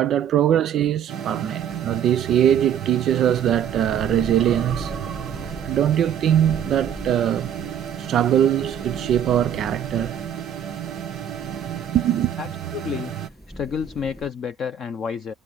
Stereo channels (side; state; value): left; quieter; 8.7 dB